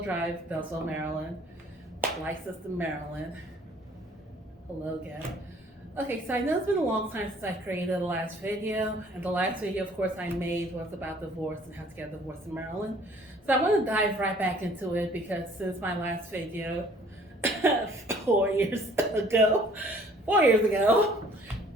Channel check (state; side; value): normal; both; correlation 0.56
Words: Drive, Beltsville, Maryland, licensed in Maryland. Hello again. Okay, so I know it's been a long time since I created the last video, and the last video, of course, I made was about divorce and how to get a divorce in Maryland. So I want to dive right back into it because since my last video, 4 years ago, 4 years ago,